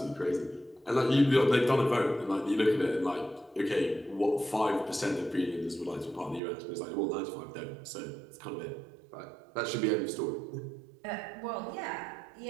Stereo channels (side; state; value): left; drops out; at 6.4 s